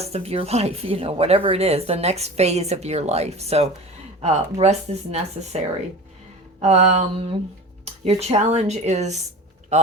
of your life, whatever it is, the next phase of your life. So rest is necessary. Um, your challenge is,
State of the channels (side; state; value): both; normal; correlation 0.35